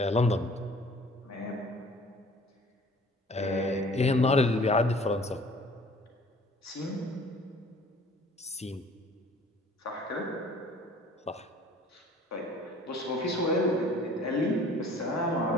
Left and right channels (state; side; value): normal; both; correlation 0.51